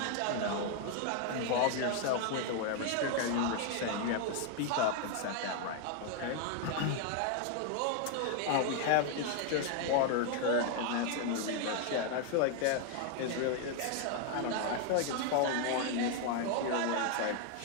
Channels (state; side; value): different; both; correlation 0.00